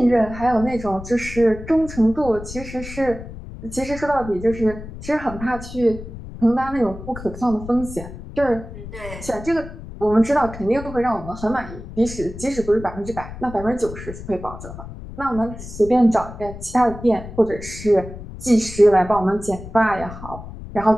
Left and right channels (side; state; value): left; noise; rumble, 12 dB below the sound